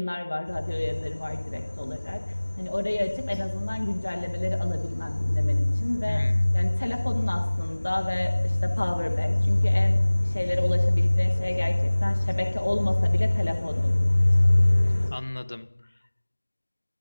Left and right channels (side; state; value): both; inverted; correlation -1.00